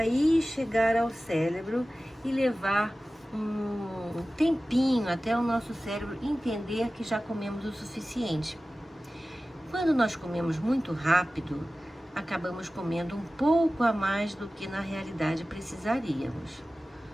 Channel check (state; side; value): normal; both; correlation 0.96